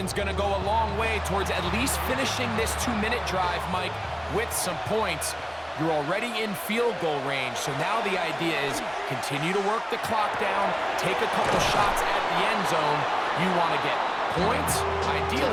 going to go a long way towards at least finishing this 2-minute drive, Mike, with some points. You're already in field goal range, so now the idea is continue to work the clock down, take a couple shots at the end zone. You want to get points,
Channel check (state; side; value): identical; both; correlation 1.00